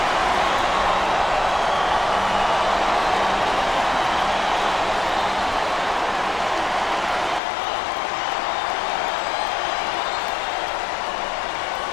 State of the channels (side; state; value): right; drops out; at 7.4 s